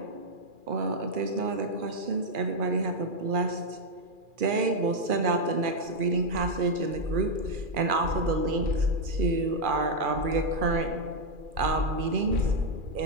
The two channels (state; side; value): late; left; 2.4 ms